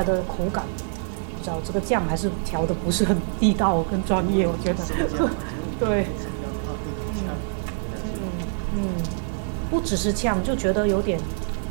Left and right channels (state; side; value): silent; left; digital silence